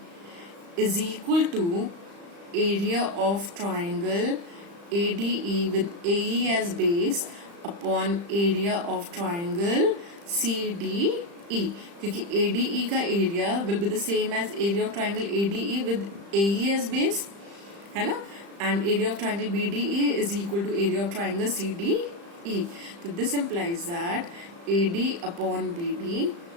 is equal to area of triangle ADE with AE as base upon area of triangle CDE. क्योंकि ADE का area will be the same as area of triangle ADE with AE as base, है ना, and area of triangle BDE is equal to area of triangle CDE. तो this implies that AD upon BD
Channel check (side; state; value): left; late; 35 ms